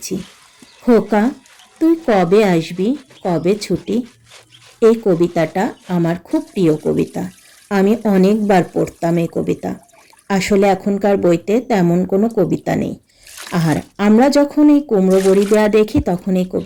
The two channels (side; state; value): both; identical; correlation 1.00